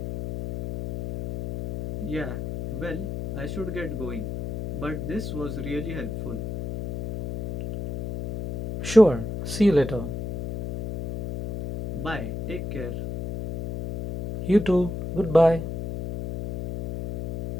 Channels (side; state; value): left; noise; hum, 6 dB below the sound